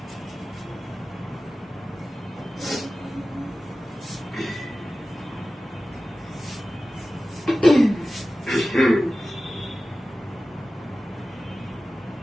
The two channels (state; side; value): normal; both; correlation 0.95